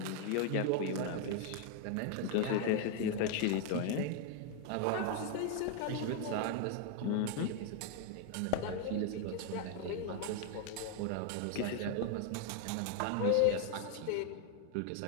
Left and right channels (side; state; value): both; different; correlation 0.00